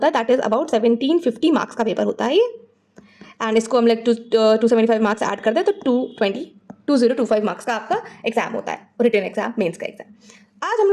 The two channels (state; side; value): identical; both; correlation 1.00